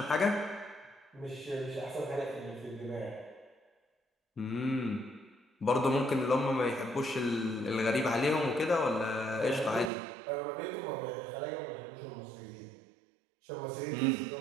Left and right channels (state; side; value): drops out; left; at 9.9 s